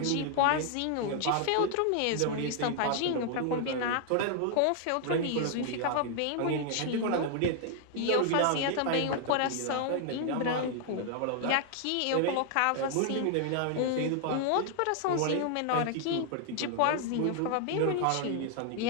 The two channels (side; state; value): both; different; correlation 0.00